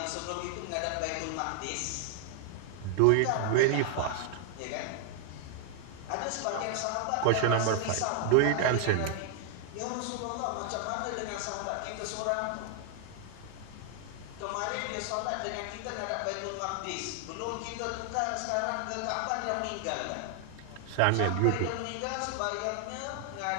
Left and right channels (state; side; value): different; both; correlation 0.00